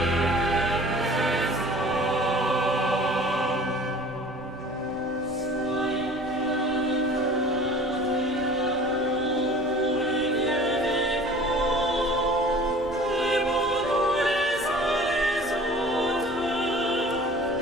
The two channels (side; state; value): both; normal; correlation 0.45